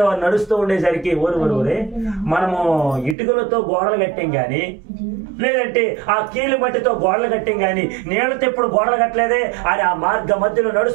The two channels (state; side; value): drops out; left; at 3.2 s